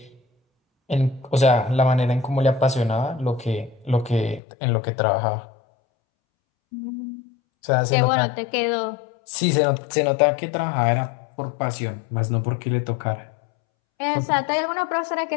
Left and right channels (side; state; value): right; drops out; at 4.4 s